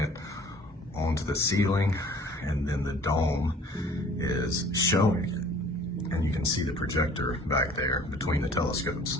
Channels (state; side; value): normal; both; correlation 0.51